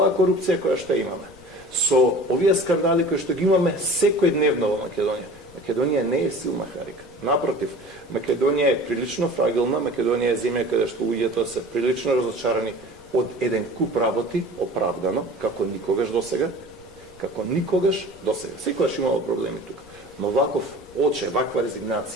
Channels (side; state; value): left; noise; rumble, 23 dB below the sound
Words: корупција која што имаме, со овие скандали кои што ги имаме секојдневно во Македонија, Македонија не е силна карика. Напротив, Македонија е прилично фрагилна, Македонија е земја каде што луѓето се прилично разочарани од еден куп работи, оправдано, како никогаш досега, Секогаш имало проблеми тука. Но ваков оче, ваква